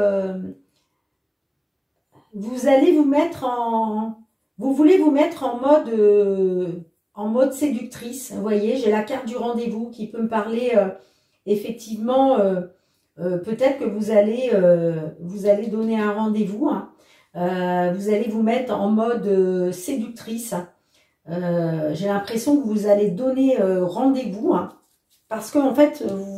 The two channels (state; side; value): identical; both; correlation 1.00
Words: vous allez vous mettre en... Vous voulez vous mettre en mode séductrice. Vous voyez, j'ai la carte du rendez-vous qui peut me parler effectivement... peut-être que vous allez donner un rendez-vous, hein. Vous allez vous mettre en mode séductrice. J'ai l'impression que vous allez donner rendez-vous, hein, parce qu'en fait, vous